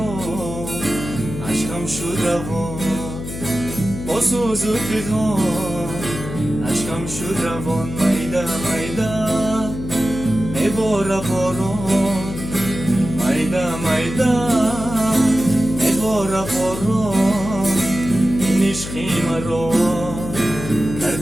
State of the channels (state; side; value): noise; left; hum, 8 dB below the sound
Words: عشقم شد روان با سوز و پیغام عشقم شد روان مایده مایده میباره باران مایده مایده میباره باران این عشقی مرا